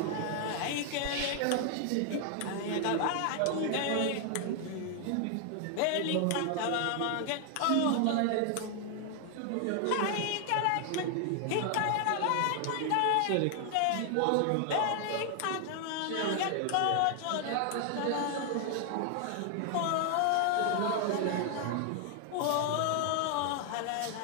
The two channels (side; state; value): both; different; correlation 0.00